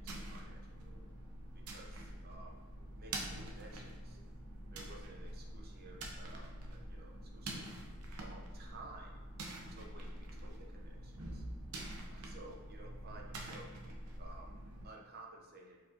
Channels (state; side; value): normal; both; correlation 0.60